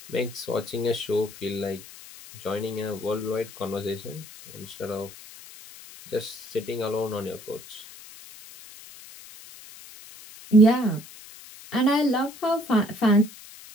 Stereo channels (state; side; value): noise; left; hiss, 18 dB below the sound